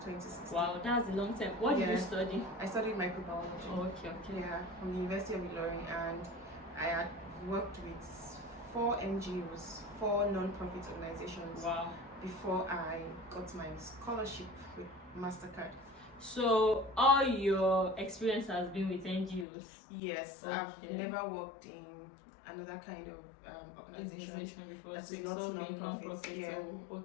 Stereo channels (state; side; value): drops out; right; at 19.5 s